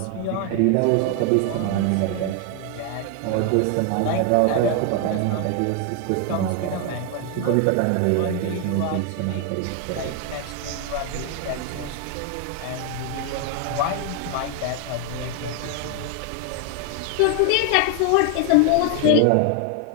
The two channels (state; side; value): different; both; correlation 0.01